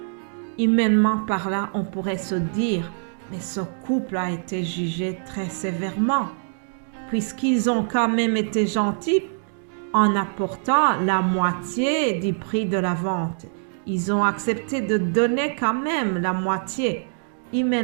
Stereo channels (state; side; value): silent; left; digital silence